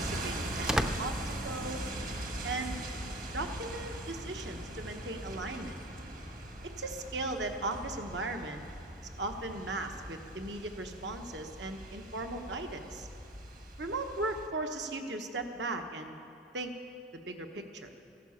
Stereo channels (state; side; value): normal; both; correlation 0.35